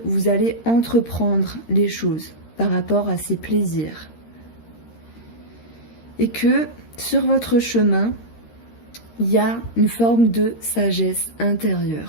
vous allez entreprendre les choses par rapport à ces plaisirs. Et que sur votre chemin, il y a une forme de sagesse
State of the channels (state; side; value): late; right; 13 ms